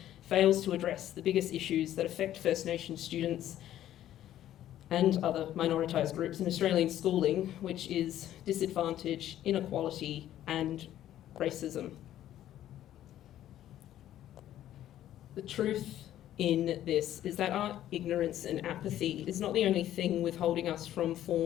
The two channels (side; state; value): right; quieter; 12.3 dB